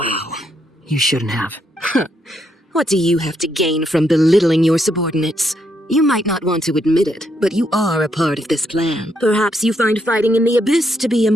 you shouldn't have. What do you have to gain from belittling your subordinates? You might not want to admit it, but you are a part of this plan. Perhaps you find fighting in the abyss to be a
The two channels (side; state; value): both; normal; correlation 0.77